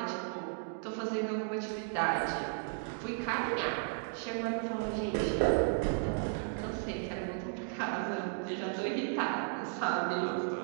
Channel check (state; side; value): silent; left; 55 dB below the other